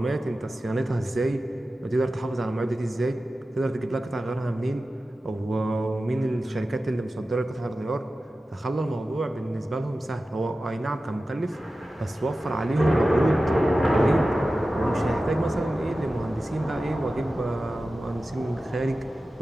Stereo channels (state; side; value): normal; both; correlation 0.94